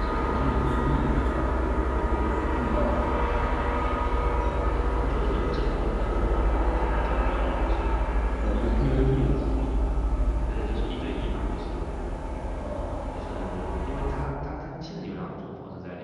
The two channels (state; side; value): identical; both; correlation 1.00